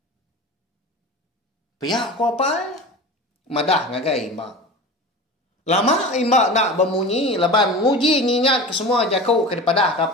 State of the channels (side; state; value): both; normal; correlation 0.33